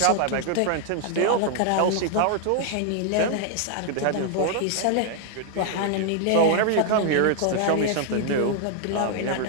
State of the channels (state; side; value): different; both; correlation 0.00